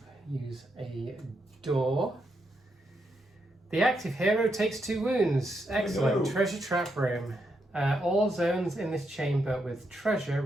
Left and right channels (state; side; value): normal; both; correlation 0.81